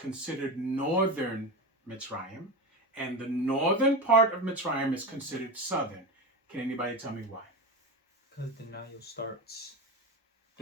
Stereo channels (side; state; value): both; normal; correlation 0.20